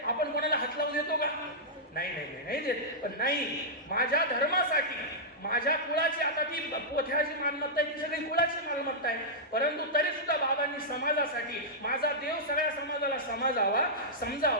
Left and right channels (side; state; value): both; normal; correlation -0.11